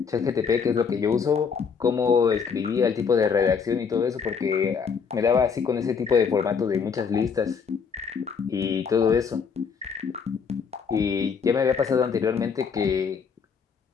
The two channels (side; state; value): right; quieter; 6.1 dB